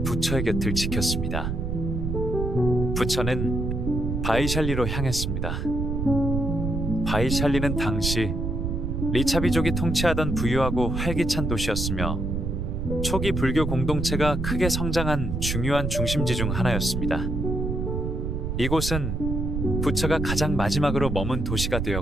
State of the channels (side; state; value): right; noise; rumble, 2 dB below the sound